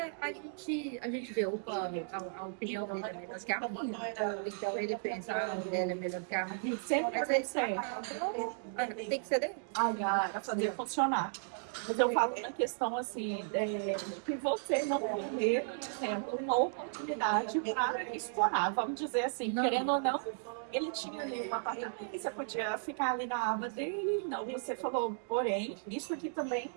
a gente vê a opinião dele é melhor que a minha. Então ele pensa, a mulher é melhor que a minha. Sempre Mas vai aí ser. tem que ser dele. Para fazer funcionar. Mas eu falo na questão assim, que você não perder, por exemplo, uma oportunidade para explorar, vamos dizer assim, querendo ou não, ele tinha ali um apartamento, você podia ficar ali na aba dele, não, você falou, porém, isso aqui também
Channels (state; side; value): silent; left; digital silence